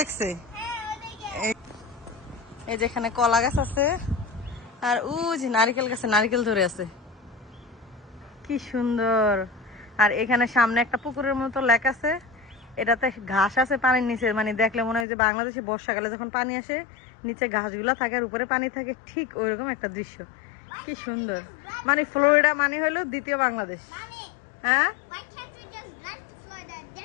এই যেখানে কলা গাছ আছে, আর ওই যে নারিকেল গাছে নারিকেল ধরে আছে, কি সুন্দর। আর এখানে সামনে একটা পুকুরের মতো লেক আছে, এটাতে ঘাস আছে পানির নিচে, মানে দেখলে মনে হয় যে বাংলাদেশে বর্ষাকালে যখন পানি আসে নিচে ঘাসগুলা থাকে আর উপরে পানি থাকে, ঠিক ওইরকম একটা দৃশ্য, কি সুন্দর। মানে ফ্লোরিডা মানে হলো দ্বিতীয় বাংলাদেশ। হ্যাঁ,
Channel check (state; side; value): drops out; right; at 15.1 s